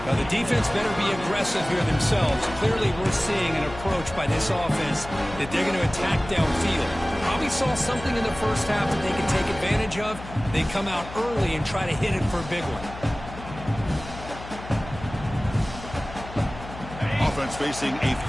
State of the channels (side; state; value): left; noise; hum, 13 dB below the sound